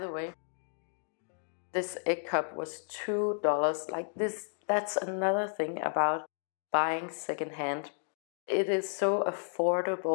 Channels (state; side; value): silent; right; digital silence